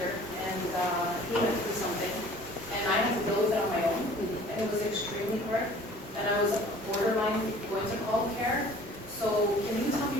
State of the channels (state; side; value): normal; both; correlation 0.49